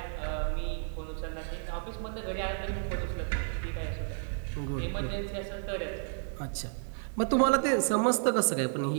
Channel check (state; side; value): silent; left; digital silence